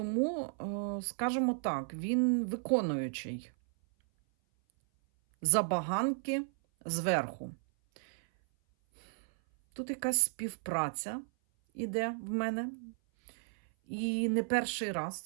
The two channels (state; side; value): silent; left; 55 dB below the other